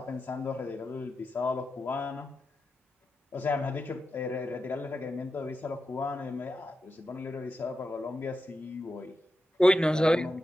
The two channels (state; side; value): normal; both; correlation 0.89